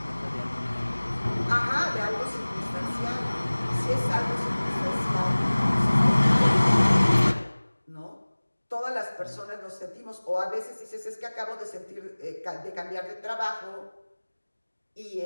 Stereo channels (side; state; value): both; inverted; correlation -1.00